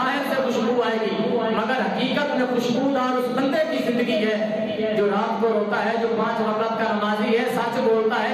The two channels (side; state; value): both; identical; correlation 1.00